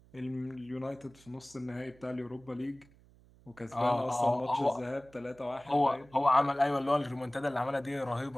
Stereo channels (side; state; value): right; noise; hum, 27 dB below the sound